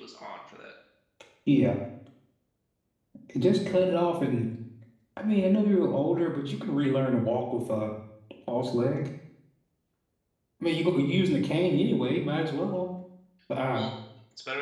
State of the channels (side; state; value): both; identical; correlation 1.00